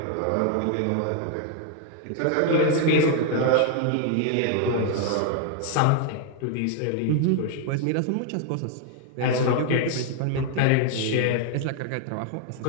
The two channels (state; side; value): different; both; correlation 0.00